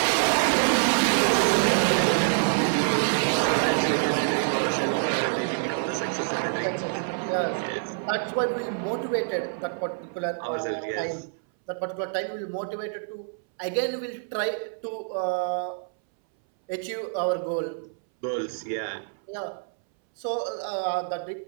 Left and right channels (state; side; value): silent; left; 61 dB below the other